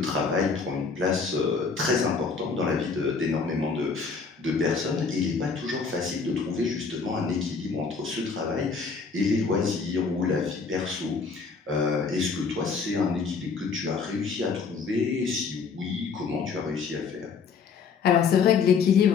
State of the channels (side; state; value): right; quieter; 5.2 dB